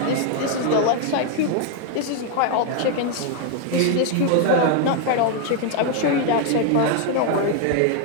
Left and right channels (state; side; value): different; both; correlation 0.00